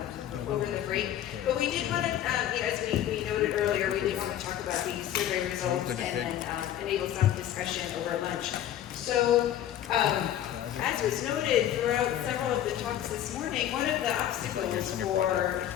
over the break. But we did want to, as we noted earlier, we did want to talk about the survey results and then enable some discussion over lunch. So, as was noted throughout several of the talks this morning, one of the obstacles for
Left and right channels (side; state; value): right; quieter; 11.4 dB